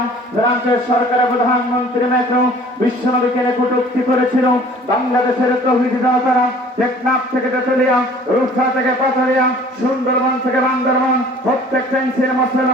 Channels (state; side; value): normal; both; correlation 0.50